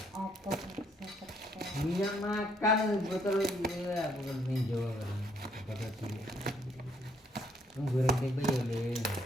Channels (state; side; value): normal; both; correlation 0.69